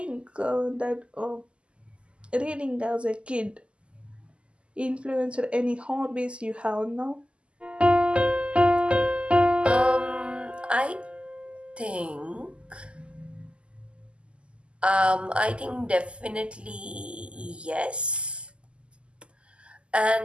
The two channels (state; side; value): late; left; 0.053 ms